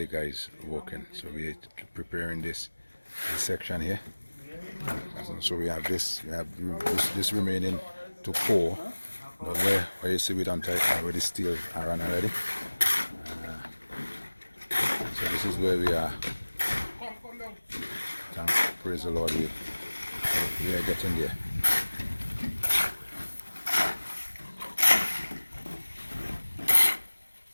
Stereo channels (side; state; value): both; inverted; correlation -1.00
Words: guys working. So we are preparing this section here. So we have this. We have this remaining to pour. But where you see we don't already steel iron already. So this is where we are. Praise the Lord, we are getting there.